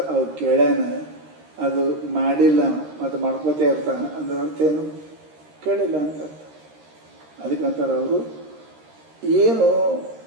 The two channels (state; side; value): late; left; 13 ms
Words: ಅವ್ರು ಕೇಳ್ಯಾನ, ಅದು ಮಾಡಿಲ್ಲ ಮತ್ತು ಮಾಡ್ಕೋತೇ ಇರ್ತಾನೆ ಅಂದ್ರೆ ಅರ್ಥ ಏನು? ಕೇಳಿಲ್ಲ ಅಂತ ಅರ್ಥ. ಅದಕ್ಕಂತಾರೆ ಅವರು ಏನು